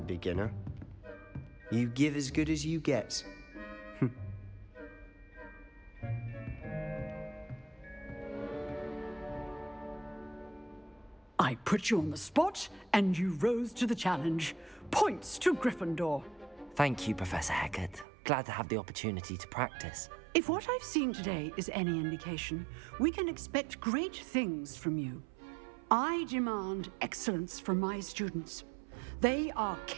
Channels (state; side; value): drops out; left; at 18.1 s